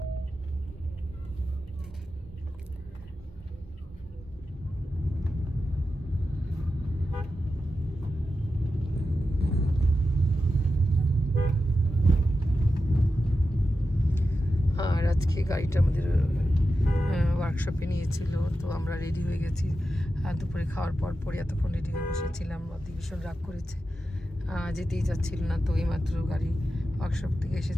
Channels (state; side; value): normal; both; correlation 0.91